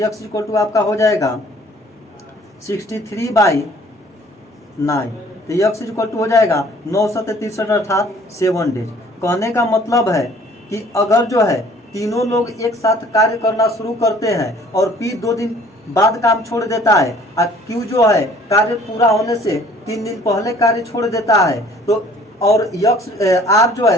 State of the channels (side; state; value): both; normal; correlation 0.54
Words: इज इक्वल टू आपका हो जाएगा 63/9, तो यक्स इज इक्वल टू हो जाएगा 963 अर्थात 7 डेज। कहने का मतलब है कि अगर जो है तीनों लोग एक साथ कार्य करना शुरू करते हैं और पी 2 दिन बाद काम छोड़ देता है और क्यू जो है कार्य पूरा होने से 3 दिन पहले कार्य छोड़ देता है, तो और यक्स आर जो